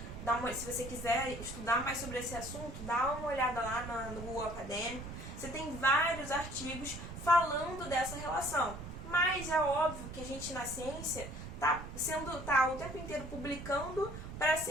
se você quiser estudar mais sobre esse assunto, dá uma olhada lá no Google Acadêmico. Você tem vários artigos falando dessa relação. Mas é óbvio que a gente na ciência tá o tempo inteiro publicando para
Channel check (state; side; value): noise; right; rumble, 10 dB below the sound